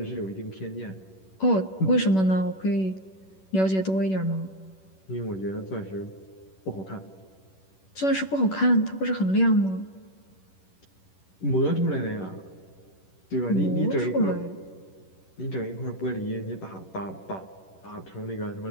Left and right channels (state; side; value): late; right; 11 ms